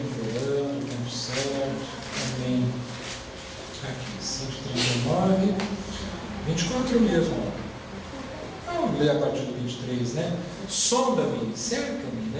tempo certo. Amém. Aqui, 139, 24 mesmo. Vamos ler a partir do 23, né? Sonda-me, cerca-me,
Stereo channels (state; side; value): identical; both; correlation 1.00